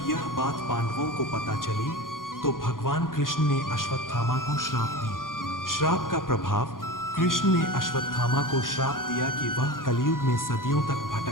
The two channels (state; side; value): late; right; 0.90 ms